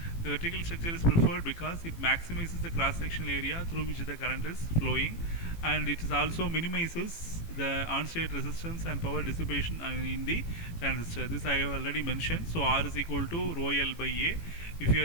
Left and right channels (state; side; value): late; right; 18 ms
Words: The vertical structure is preferred because it maximizes the cross-sectional area through which the current is flowing, and it is also minimizes the on-state resistance and power dissipation in the transistor. This I have already mentioned. So R is equal to rho L by A. If you